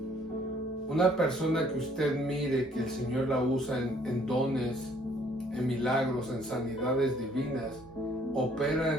Una persona que usted mire que el Señor la usa en dones, en milagros, en sanidades divinas, opera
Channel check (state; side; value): normal; both; correlation 0.61